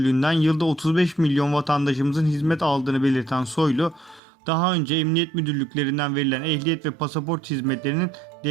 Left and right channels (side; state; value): left; drops out; at 4.2 s